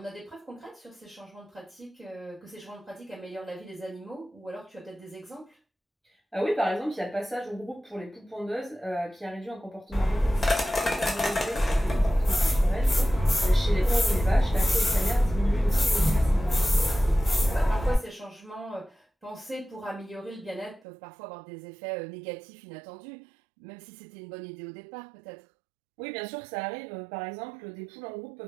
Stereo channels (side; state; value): left; drops out; at 20.8 s